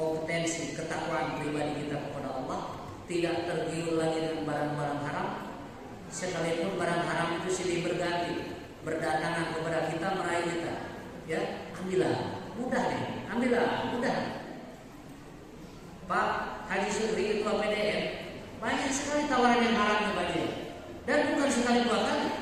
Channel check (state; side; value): identical; both; correlation 1.00